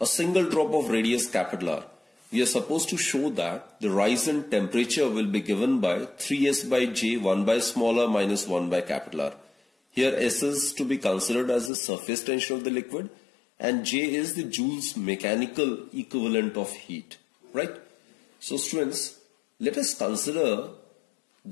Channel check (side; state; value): right; drops out; at 11.7 s